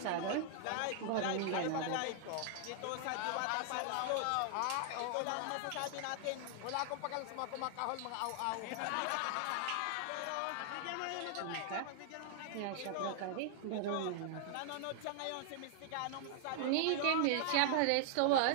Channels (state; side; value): different; both; correlation 0.00